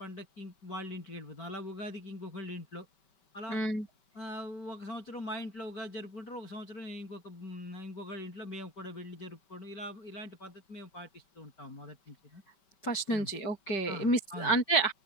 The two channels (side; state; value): right; late; 5.2 ms